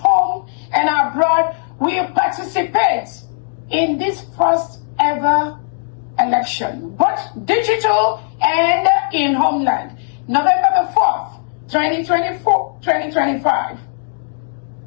and abroad, will participate in this first ever election, both digital and in homeland. November the 4th, 2025.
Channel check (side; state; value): right; silent; digital silence